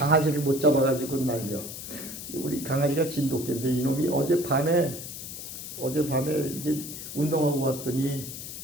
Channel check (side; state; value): left; noise; hiss, 9 dB below the sound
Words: 못 잡아가지고 날려. 우리 강아지가 진돗개인데 이놈이 어젯밤에 이게 운동하고 왔더니